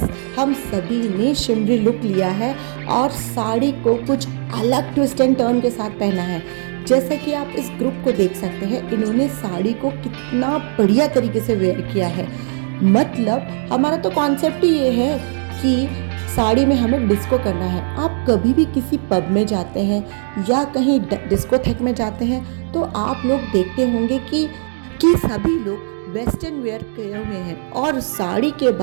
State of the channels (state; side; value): silent; left; digital silence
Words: हम सभी ने शिमरी लुक लिया है और साड़ी को कुछ अलग ट्विस्ट एंड टर्न के साथ पहना है। जैसा कि आप इस ग्रुप को देख सकते हैं, इन्होंने साड़ी को कितना बढ़िया तरीके से वेयर किया है। मतलब हमारा तो कॉन्सेप्ट ही ये है कि साड़ी में हमें डिस्को करना है। आप कभी भी किसी पब में जाते हैं या कहीं डिस्कोथेक में जाते हैं तो आप लोग देखते होंगे कि कि सभी लोग वेस्टर्न वेयर किए हुए हैं और साड़ी के